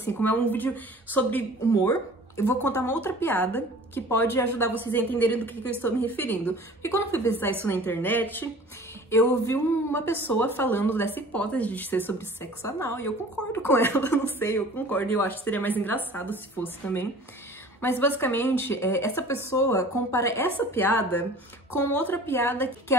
como é um vídeo sobre humor. Eu vou contar uma outra piada que pode ajudar vocês a entenderem do que eu estou me referindo. Porque quando eu fui pesquisar isso na internet, eu vi uma pessoa falando dessa hipótese de ser sobre sexo anal, e eu concordo com ela, não sei, eu concordo, e eu acho que seria mais engraçado se fosse também. Mas basicamente, essa pessoa compara essa piada com outra piada, que é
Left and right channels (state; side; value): normal; both; correlation 0.45